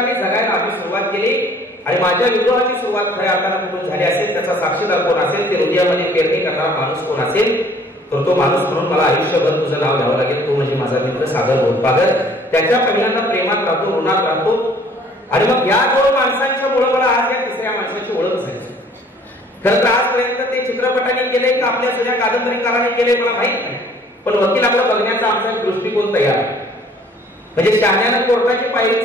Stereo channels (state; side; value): normal; both; correlation 0.56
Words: जगायला आम्ही सुरुवात केली. आणि माझ्या विद्रोहाची सुरुवात खऱ्या अर्थानं कुठून झाली असेल, त्याचा साक्षीदार कोण असेल, ते हृदयामध्ये पेरणी करणारा माणूस कोण असेल, तर तो माणूस म्हणून मला आयुष्यभर तुझं नाव घ्यावं लागेल. तो म्हणजे माझा मित्र सागर गोदपागर. त्याच्या पहिल्यांदा प्रेमात राहतो, ऋणात राहतो. आणि मग या दोन माणसांच्या मुळे मला आज या तिसऱ्या माणसाची ओळख झाली. खरं तर आजपर्यंत ते चित्रपटाने केले का आपल्या जुन्या कादंबरीकाराने केले मला माहित नाही, पण वकिलाकडे बघण्याचा आमचा दृष्टिकोन तयार आहे. म्हणजे शहाण्यानं कोर्टाची पायरी